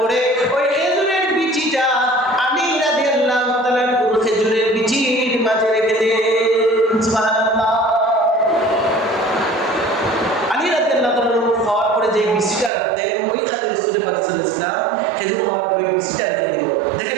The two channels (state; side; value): drops out; left; at 12.7 s